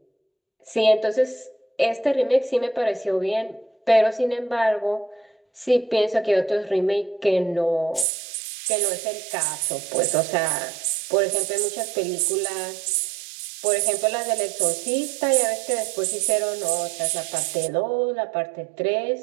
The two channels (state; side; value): drops out; left; at 8.1 s